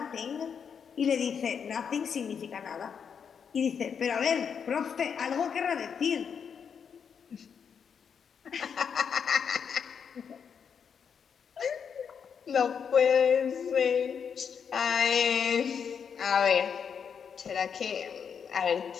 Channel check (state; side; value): quieter; right; 7.0 dB